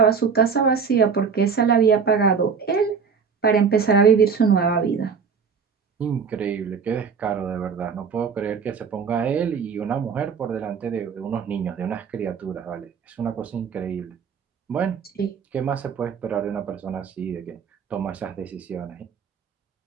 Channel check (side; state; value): left; quieter; 6.1 dB